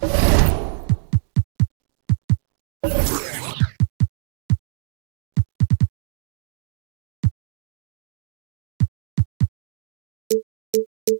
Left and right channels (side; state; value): left; silent; digital silence